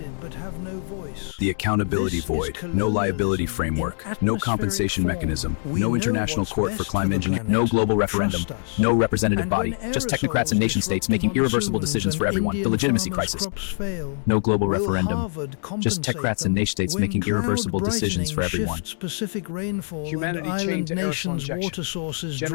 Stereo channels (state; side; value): silent; right; 63 dB below the other